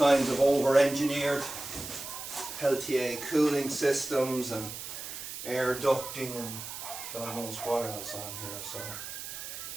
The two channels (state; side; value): noise; right; hiss, 9 dB below the sound